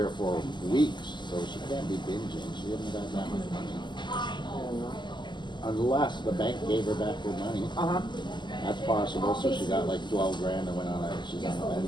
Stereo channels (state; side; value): late; right; 0.22 ms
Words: or 4 weeks, so she can't be binging. She hasn't got that much money. I don't know. Unless the bank gave her back her money. That's possible. So she got like 12 grand and went on she's on a